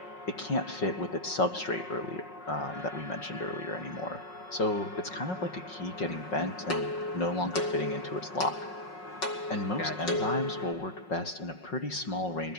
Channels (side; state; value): right; late; 5.5 ms